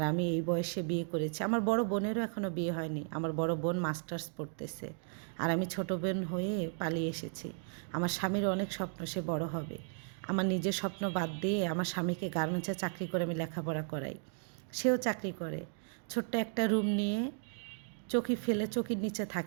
আমি এই বয়সে বিয়ে করেছি। আমার বড় বোনেরও এখনও বিয়ে হয়নি, আমার বড় বোন মাস্টার্স পড়তেছে, আর আমি ছোট বোন হয়ে পালিয়ে এসেছি। আমার স্বামীর অনেক স্বপ্ন, সে বড় হবে। আমার নিজের স্বপ্ন বাদ দিয়ে আমার স্বামীকে গার্মেন্টসে চাকরি করে আমি লেখাপড়া করাই, সেও চাকরি করে। ছোট্ট একটা রুম নিয়ে চকি ফেলে চকির নিচে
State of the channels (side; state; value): left; silent; 54 dB below the other